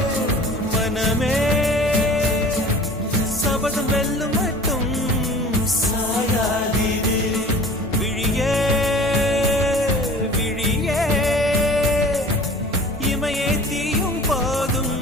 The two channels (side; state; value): both; normal; correlation 0.43